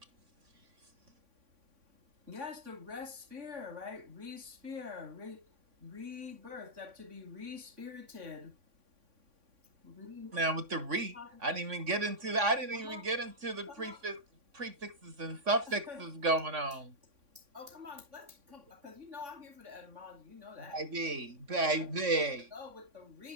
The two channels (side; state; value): left; late; 3.6 ms